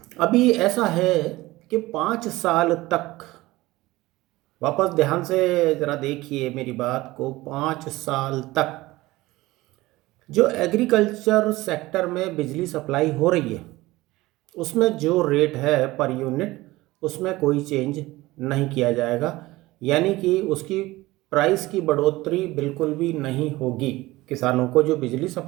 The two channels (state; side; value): quieter; left; 19.1 dB